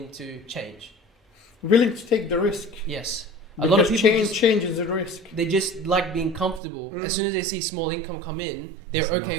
to change. Willing to take the risk. Yes. Because a lot of people change is a risk. They just like being comfortable. As soon as they see small income come in, they're okay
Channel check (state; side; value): drops out; left; at 6.6 s